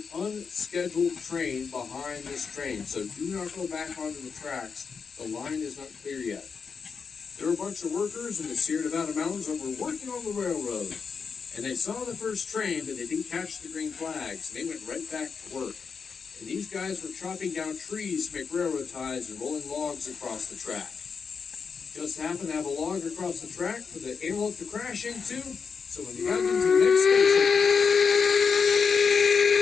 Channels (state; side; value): quieter; right; 5.7 dB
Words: unscheduled train behind this train. So do not go back onto the tracks. The line is not clear yet. There were a bunch of workers in the Sierra Nevada mountains that were working on the railroad. And they saw the first train, but they didn't catch the green flags. And they went right back to work. And these guys were chopping down trees to make railroad ties and rolling logs across the track. Just happened to have a log across the track for the Antelope to crash into. So when they got into the next station,